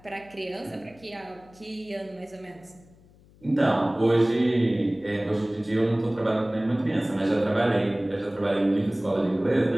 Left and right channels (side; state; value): left; noise; hum, 27 dB below the sound